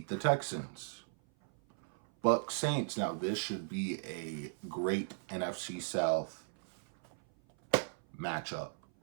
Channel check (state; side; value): silent; left; 53 dB below the other